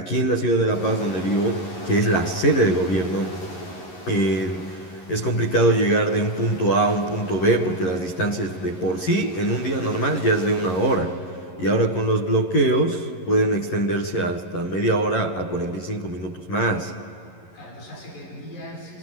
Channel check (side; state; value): right; late; 11 ms